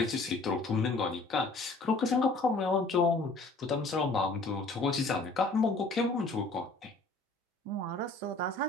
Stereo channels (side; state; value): right; quieter; 3.2 dB